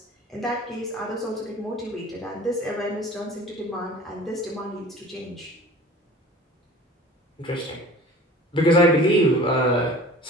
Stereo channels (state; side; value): normal; both; correlation 0.43